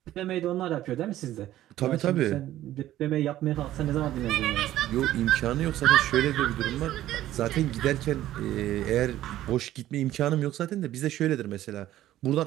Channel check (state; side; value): quieter; left; 13.7 dB